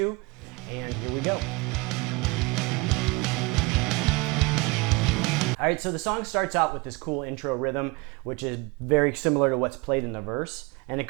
And here we go. All right, so the song starts out with this cool intro rhythm, which is very similar to what's played in the verse. And it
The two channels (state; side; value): quieter; left; 25.4 dB